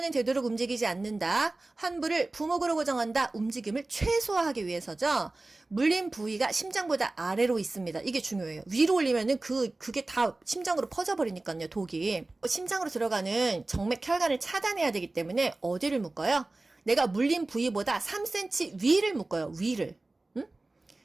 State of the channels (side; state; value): left; quieter; 3.0 dB